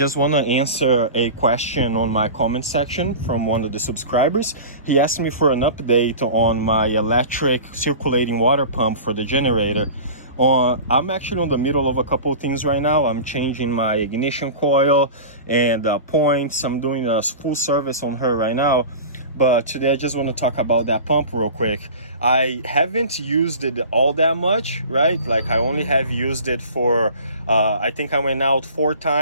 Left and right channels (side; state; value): both; inverted; correlation -0.36